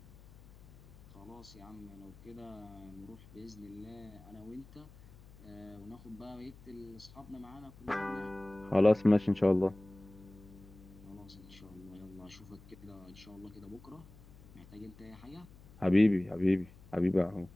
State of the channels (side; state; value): left; noise; hum, 21 dB below the sound